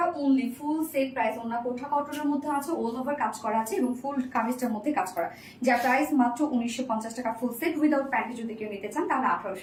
অনলি ফুল সেট প্রাইস। ওনার কোঠা কটনের মধ্যে আছে, অল ওভার কাজ করা আছে এবং ফুল কামিজটার মধ্যে কাজ করা, যার প্রাইস মাত্র 1950 টাকা ফুল সেট। উইদাউট প্যান্টে যদি কেউ নিতে চান তাহলে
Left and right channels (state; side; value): identical; both; correlation 1.00